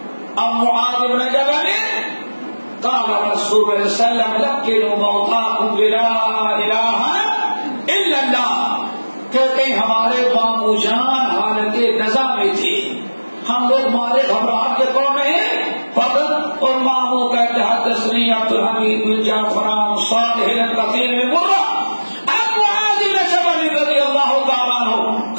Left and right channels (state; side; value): inverted; both; correlation -1.00